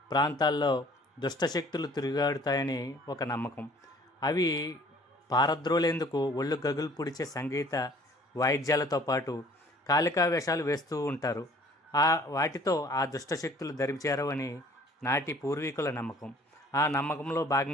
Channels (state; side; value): normal; both; correlation 0.53